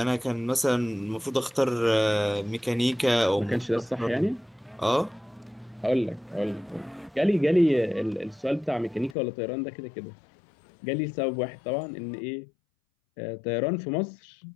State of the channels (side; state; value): right; drops out; at 9.2 s